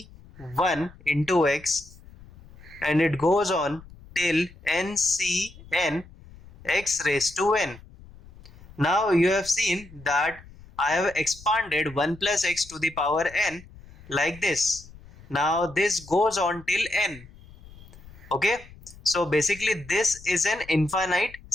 into x, and it goes on till ncn x raised to n. Now you have seen that I have expanded 1 plus x to the power n like this. Now this goes on till n. Okay, so basically this is an infinite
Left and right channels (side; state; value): left; noise; rumble, 21 dB below the sound